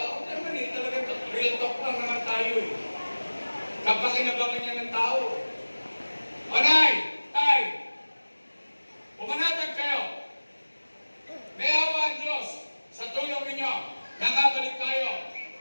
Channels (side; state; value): both; inverted; correlation -1.00